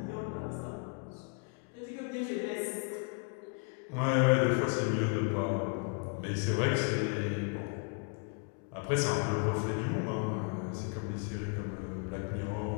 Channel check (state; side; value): quieter; right; 36.8 dB